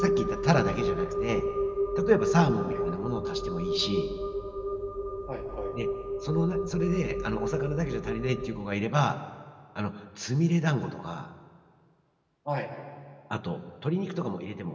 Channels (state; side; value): identical; both; correlation 1.00